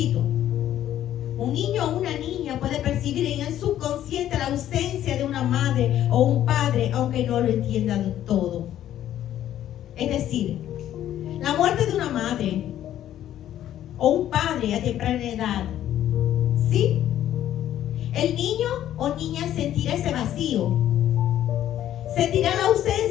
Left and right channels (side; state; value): right; quieter; 11.8 dB